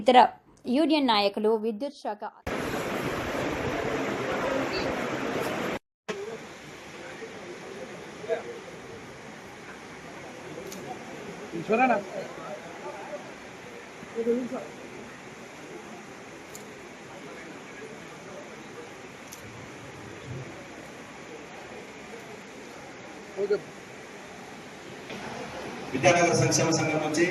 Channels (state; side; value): identical; both; correlation 1.00